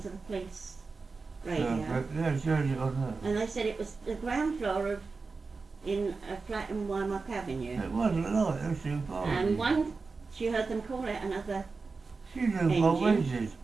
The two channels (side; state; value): left; quieter; 4.3 dB